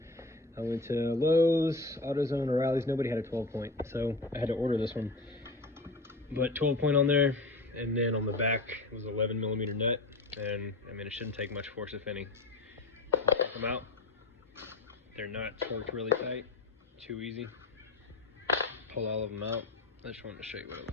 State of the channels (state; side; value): quieter; right; 3.1 dB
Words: I went to Lowe's, AutoZone, O'Reilly's. Nobody had a 12 point, so I had to order this one. But 12 point on there, and then on the back it was 11 millimeter nut. And I mean, it shouldn't take much force, if any. Take them out. They're not torqued really tight. Too easy. Pull all of them out. I just wanted to show you what it